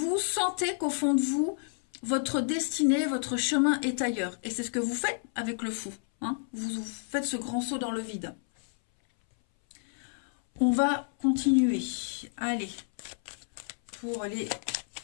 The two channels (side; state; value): right; silent; 58 dB below the other